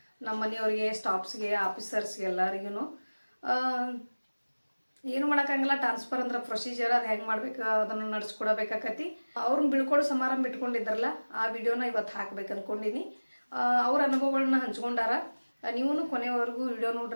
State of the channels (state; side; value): inverted; both; correlation -1.00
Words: ನಮ್ಮ ಮನೆಯವ್ರಿಗೆ, ಸ್ಟಾಫ್ಸ್ಗೆ, ಆಫೀಸರ್ಸ್ಗೆ ಎಲ್ಲರಿಗೂ. ಏನು ಮಾಡೋಕ್ಕಾಗಲ್ಲ. ಟ್ರಾನ್ಸ್ಫರ್ ಅಂದ್ರೆ ಪ್ರೊಸೀಜರ್, ಅದು ಹೆಂಗೆ ಮಾಡ್ಬೇಕು ಅದನ್ನು ನಡೆಸ್ಕೊಡಬೇಕಾಕತಿ. ಅವ್ರನ್ನ ಬೀಳ್ಕೊಡೋ ಸಮಾರಂಭ ಇಟ್ಕೊಂಡಿದ್ದಾರಲ್ಲ, ಆ ವಿಡಿಯೋನ ಇವತ್ತು ಹಾಕ್ಬೇಕು ಅಂದ್ಕೊಂಡಿನಿ. ಅವ್ರ ಅನುಭವಗಳನ್ನ ಹಂಚ್ಕೊಂಡಾರ. ನೀವು ಕೊನೆವರೆಗೂ ವಿಡಿಯೋ